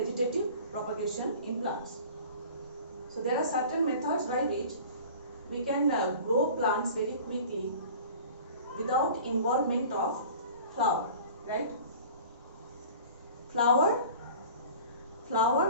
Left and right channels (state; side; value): inverted; both; correlation -0.43